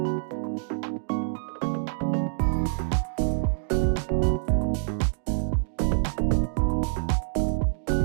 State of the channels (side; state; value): left; silent; digital silence